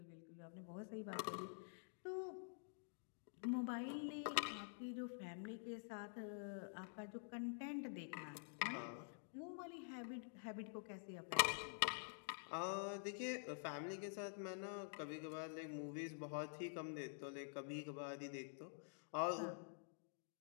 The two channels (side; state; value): right; silent; digital silence